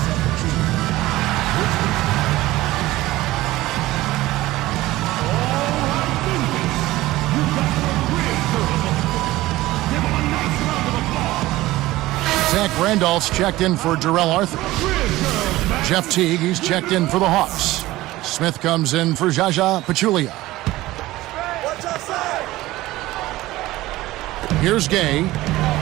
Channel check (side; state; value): left; quieter; 17.5 dB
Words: Zach Randolph's checked in for Darrell Arthur. Jeff Teague, he's checked in for the Hawks. Smith comes in for Jaja Pachulia. Here's Gay.